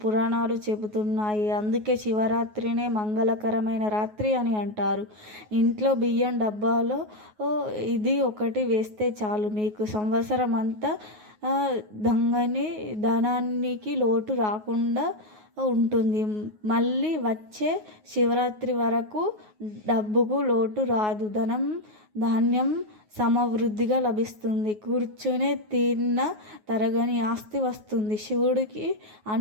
పురాణాలు చెబుతున్నాయి. అందుకే శివరాత్రినే మంగళకరమైన రాత్రి అని అంటారు. ఇంట్లో బియ్యం డబ్బాలో ఇది ఒకటి వేస్తే చాలు, మీకు సంవత్సరం అంతా ధనానికి లోటు రాకుండా ఉంటుంది. మళ్ళీ వచ్చే శివరాత్రి వరకు డబ్బుకు లోటు రాదు. ధాన్యం సమవృద్ధిగా లభిస్తుంది. కూర్చునే తిన్న తరగని ఆస్తి వస్తుంది. శివుడికి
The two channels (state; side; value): late; left; 9.4 ms